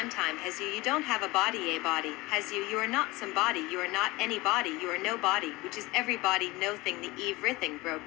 has you don't have a body has you are not somebody you are not anybody you are nobody which is everybody no thing the everything broke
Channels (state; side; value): quieter; right; 21.8 dB